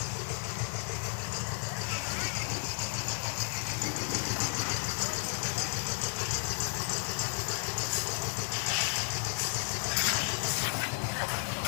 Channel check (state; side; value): silent; right; 56 dB below the other